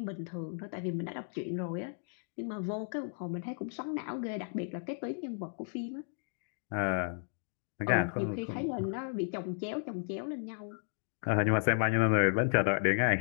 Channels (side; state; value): right; silent; 55 dB below the other